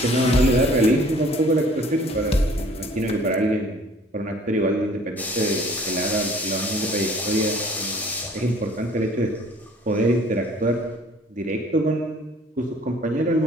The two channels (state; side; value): normal; both; correlation 0.53